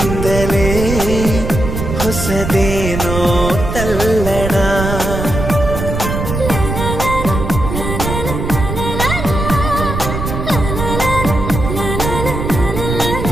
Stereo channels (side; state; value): right; noise; rumble, 4 dB below the sound